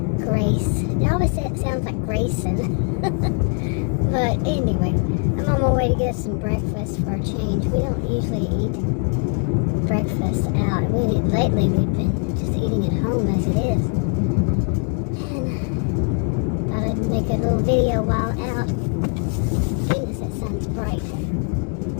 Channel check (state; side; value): quieter; right; 37.9 dB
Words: Grace. It always sounds like Grayson. But anyway, I'm on my way to get some breakfast for a change. We don't usually eat breakfast out. Lately we've been just eating at home as it is. And thought I'd make a little video while out. Goodness, that sun's bright.